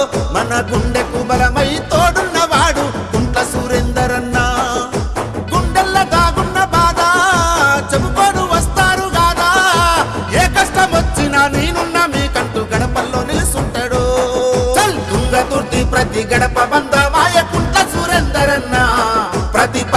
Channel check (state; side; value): identical; both; correlation 1.00